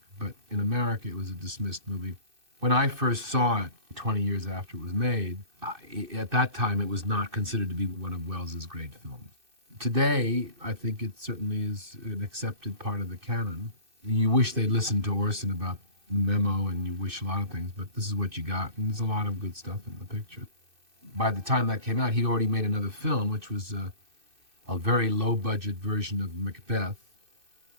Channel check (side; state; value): left; late; 2.6 ms